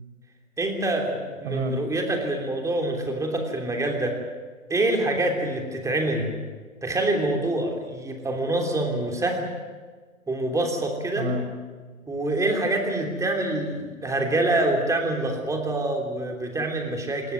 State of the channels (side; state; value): both; normal; correlation 0.46